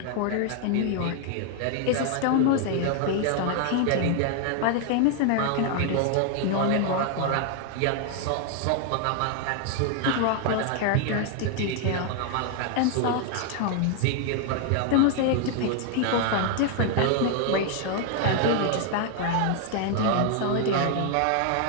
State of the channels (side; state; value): both; different; correlation 0.00